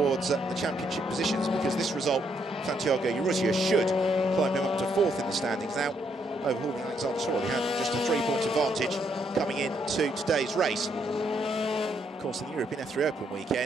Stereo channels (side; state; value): both; normal; correlation 0.74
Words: the championship positions, because this result, Santiago Urrutia, should climb him up to 4th in the standings now, overhauling Alexander Torrell. He had just a 3-point advantage coming into today's race. Of course, in the European F3 Open